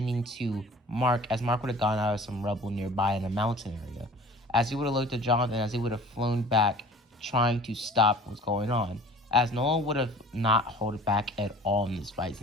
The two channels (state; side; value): normal; both; correlation 0.45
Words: to Mark, as Mark would have gone out of some rubble nearby in a mountain area, as he would have looked at Jonathan, as he would have flown back, trying to stop what's going on, as Nolan would have not held back at all in this fight,